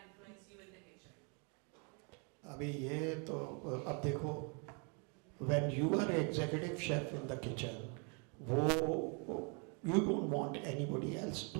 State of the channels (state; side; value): quieter; left; 36.1 dB